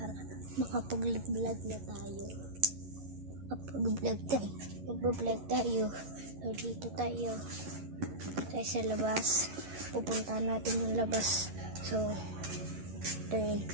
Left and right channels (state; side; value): late; left; 11 ms